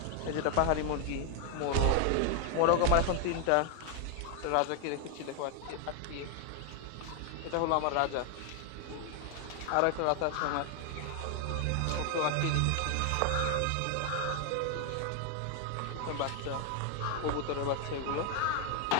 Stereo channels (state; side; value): different; both; correlation 0.00